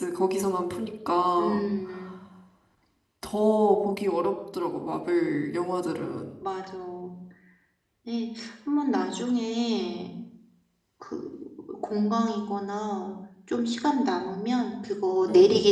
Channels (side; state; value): both; identical; correlation 1.00